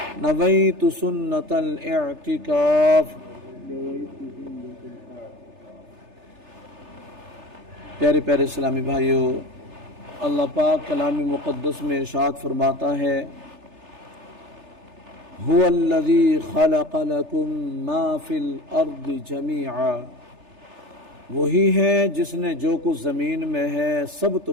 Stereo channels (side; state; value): left; late; 3.3 ms